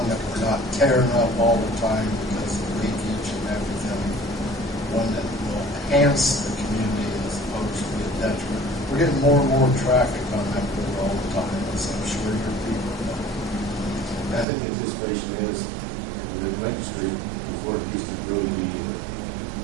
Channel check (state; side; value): drops out; left; at 14.5 s